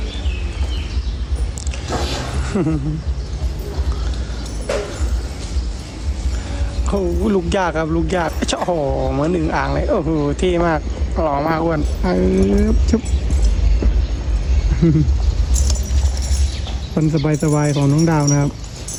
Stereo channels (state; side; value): identical; both; correlation 1.00